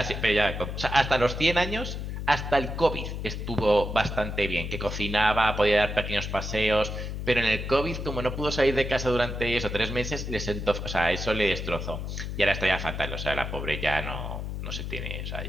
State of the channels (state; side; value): noise; left; hum, 5 dB below the sound